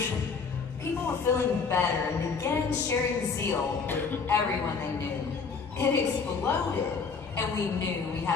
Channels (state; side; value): quieter; right; 5.2 dB